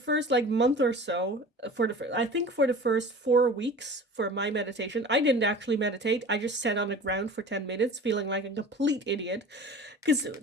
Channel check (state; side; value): normal; both; correlation 0.39